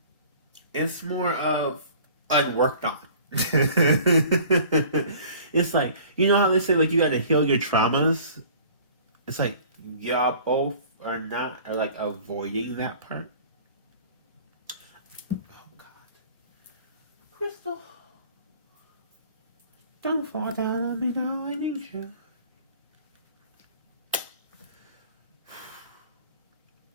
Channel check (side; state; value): both; inverted; correlation -0.48